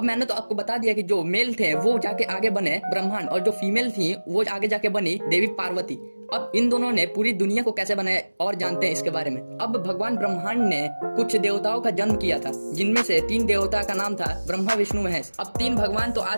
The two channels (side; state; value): both; inverted; correlation -1.00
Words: मैंने तो आपको बता दिया कि जो मेल थे वो जाके आगे बने ब्रह्मांड, और जो फीमेल थी वो आगे जाके बनी देवी पार्वती। अब इन दोनों ने पूरी दुनिया को कैसे बनाया और जानते हैं इसके बारे में। अब भगवान ब्रह्मांड ने कुछ देवताओं का जन्म किया था, जिनमें से 3 देवता का नाम था ब्रह्मा विष्णु महेश। अब 3 भगवान तो आ